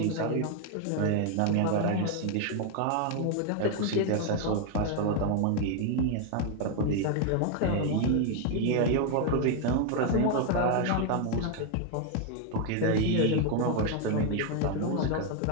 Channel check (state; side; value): different; both; correlation 0.01